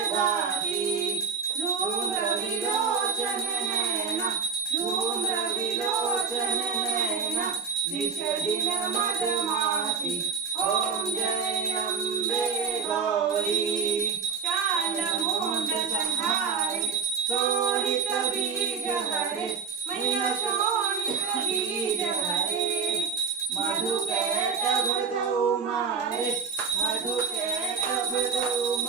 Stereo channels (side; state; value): left; quieter; 5.7 dB